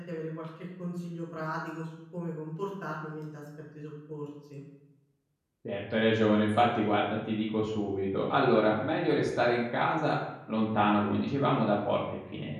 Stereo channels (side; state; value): both; identical; correlation 1.00